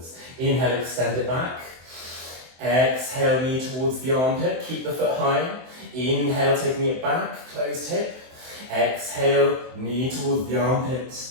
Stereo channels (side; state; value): left; late; 23 ms